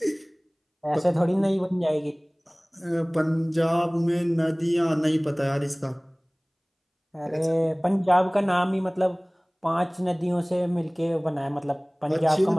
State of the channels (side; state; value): both; identical; correlation 1.00